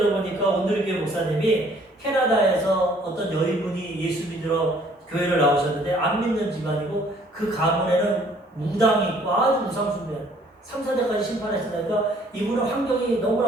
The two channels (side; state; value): both; normal; correlation 0.59